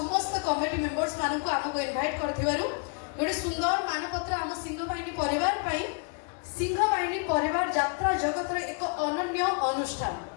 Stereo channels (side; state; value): right; quieter; 37.3 dB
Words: कमिटी मेंबर्स मानक आमको इनवाइट कर गोटे सुंदर मानपत्र आम सिंहबाहिनी परिवार सिंहबाहिनी परिवार यात्रा जगत एक अनन्य अनुष्ठान